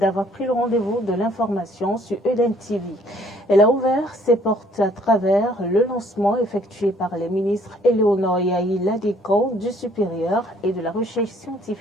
pris le rendez-vous de l'information sur Eden TV. Elle a ouvert ses portes à travers le lancement effectué par les ministres Éléonore Yahi Ladiko du supérieur et de la recherche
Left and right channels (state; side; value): normal; both; correlation 0.61